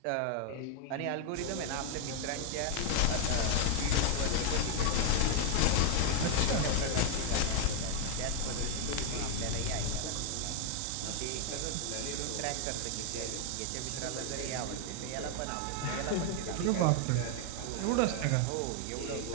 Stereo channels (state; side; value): different; both; correlation 0.00